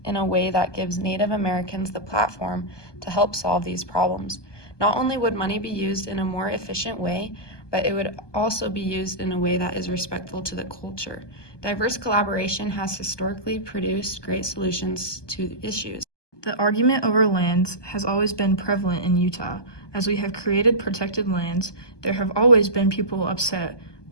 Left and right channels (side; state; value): right; late; 1.2 ms